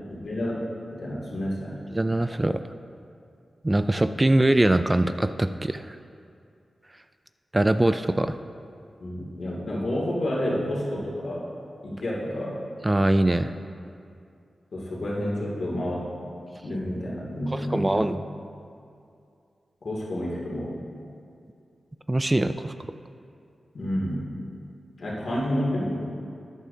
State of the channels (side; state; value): both; normal; correlation 0.97